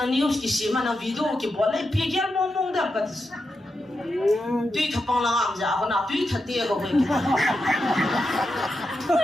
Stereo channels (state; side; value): normal; both; correlation 0.87